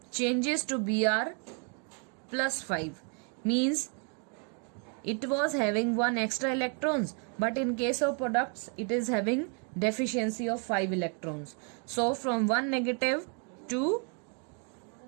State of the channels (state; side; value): quieter; left; 39.4 dB